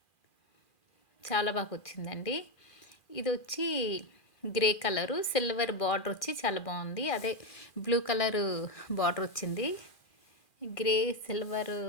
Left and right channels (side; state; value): right; late; 2.4 ms